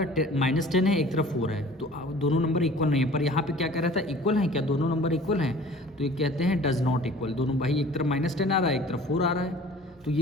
-10 है, एक तरफ 4 है, तो दोनों नंबर इक्वल नहीं है। पर यहाँ पे क्या कह रहा था? इक्वल हैं क्या? दोनों नंबर इक्वल हैं, तो ये कहते हैं डज नॉट इक्वल। दोनों भाई, एक तरफ -10 आ रहा है, एक तरफ 4 आ रहा है, तो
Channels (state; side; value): normal; both; correlation 0.47